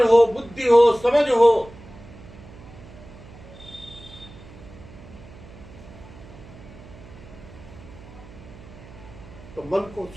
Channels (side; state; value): right; noise; hum, 18 dB below the sound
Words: हो, बुद्धि हो, समझ हो। तो मन को